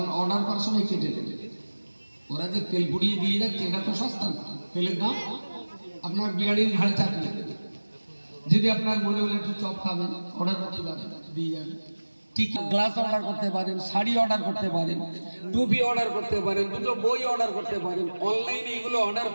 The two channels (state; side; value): inverted; both; correlation -1.00